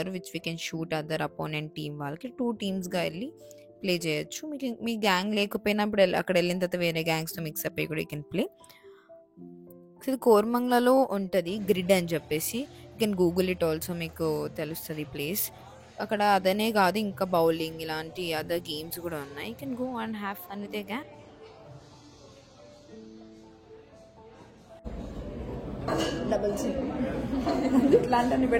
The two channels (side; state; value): both; identical; correlation 1.00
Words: which we can shoot other opponent team వాళ్ళకి. 2 టీమ్స్గా వెళ్ళి ప్లే చేయొచ్చు. మీకు మీ గ్యాంగ్ లేకపోయినప్పుడు అక్కడ వెళ్ళిన తర్వాత వేరే గ్యాంగ్స్తో మిక్సప్ అయ్యి కూడా యూ కెన్ ప్లే. ఇది కోరమంగళలో ఉంటుంది గ్రిడ్ అని చెప్పేసి. You can Google it also, మీకు తెలుస్తుంది ప్లేస్. అక్కడ అదనే కాదు ఇంకా బౌలింగ్ ఇలాంటి అదర్ గేమ్స్ కూడా ఉన్నాయి. You can go and have fun with a gang. Double చిన్ ఇట్లాంటివన్నీ